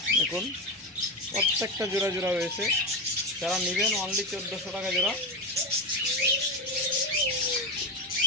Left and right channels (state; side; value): normal; both; correlation 0.15